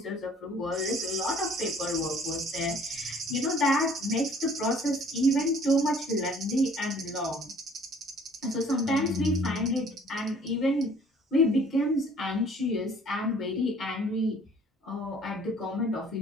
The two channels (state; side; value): normal; both; correlation 0.55